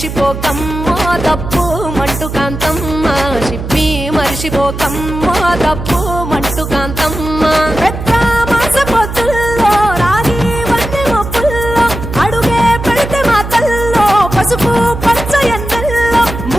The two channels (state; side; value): noise; right; hum, 7 dB below the sound